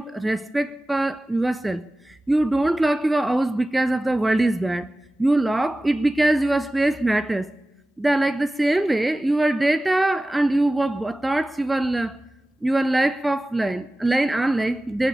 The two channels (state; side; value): normal; both; correlation 0.96